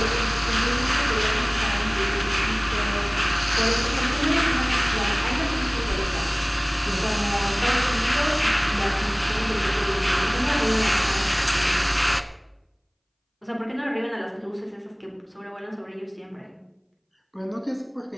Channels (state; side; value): identical; both; correlation 1.00